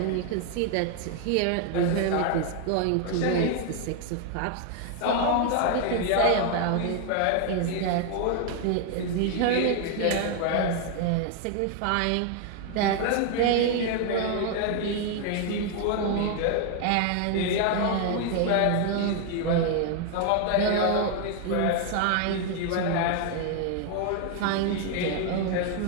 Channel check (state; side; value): different; both; correlation 0.00